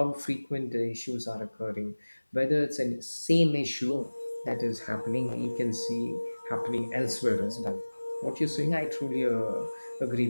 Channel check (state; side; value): inverted; both; correlation -1.00